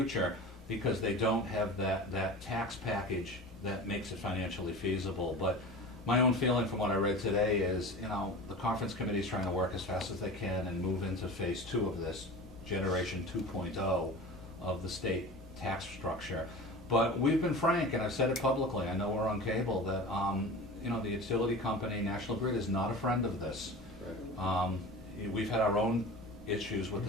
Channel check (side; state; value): both; normal; correlation 0.34